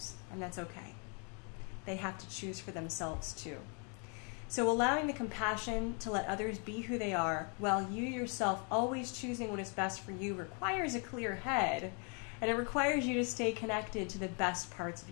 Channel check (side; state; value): right; quieter; 37.2 dB